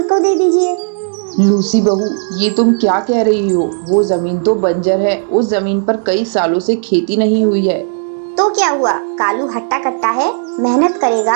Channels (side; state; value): left; silent; digital silence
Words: को दे दीजिए। लूसी बहू, ये तुम क्या कह रही हो? वो जमीन तो बंजर है। उस जमीन पर कई सालों से खेती नहीं हुई है। तो क्या हुआ, कालू हट्टा कट्टा है, मेहनत